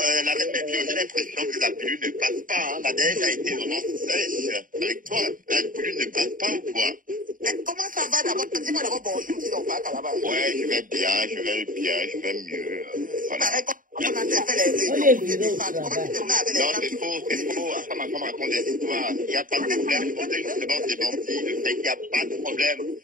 la reine des Dieux, j'ai l'impression que la pilule ne passe pas. Hein. La neige a été vraiment sèche avec toi. La pilule ne passe pas ou quoi? Comment ça va d'abord? Dis-moi d'abord bonjour si on va là-bas. Ouais, je vais bien, je vais mieux. Voilà. Comment on a fait les réunions pour te défendre? Comment tu te mets avec les gens? Non, c'est faux. À ça, ma femme raconte des histoires. Il n'y a pas de problème. Je voudrais justement démentir le fait qu'il n'y a pas de problème.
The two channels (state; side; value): late; left; 0.39 ms